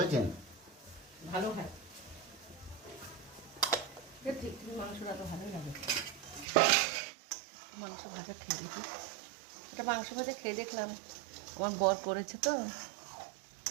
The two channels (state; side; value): drops out; left; at 6.5 s